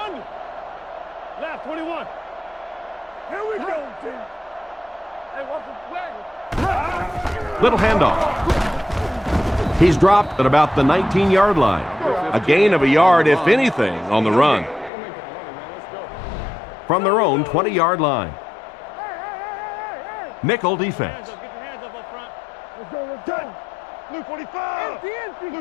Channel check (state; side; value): drops out; right; at 14.9 s